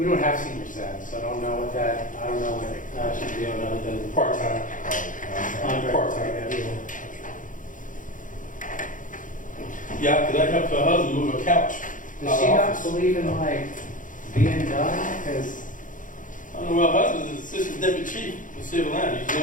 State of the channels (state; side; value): late; right; 0.38 ms